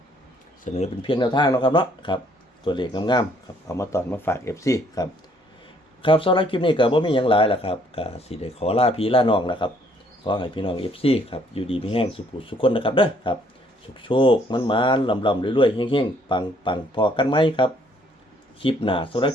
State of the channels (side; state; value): both; normal; correlation 0.64